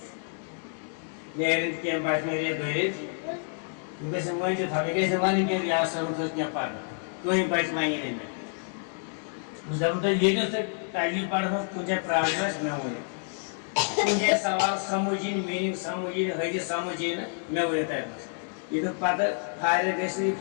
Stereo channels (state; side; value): silent; right; 59 dB below the other